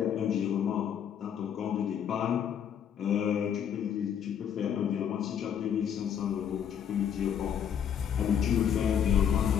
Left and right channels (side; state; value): right; quieter; 8.6 dB